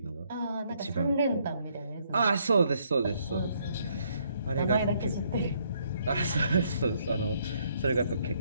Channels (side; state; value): both; inverted; correlation -0.70